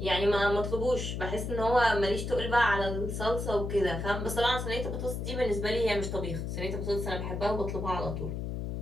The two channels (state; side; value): noise; left; hum, 4 dB below the sound